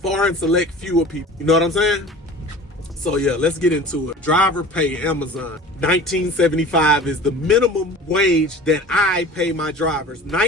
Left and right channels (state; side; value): normal; both; correlation 0.40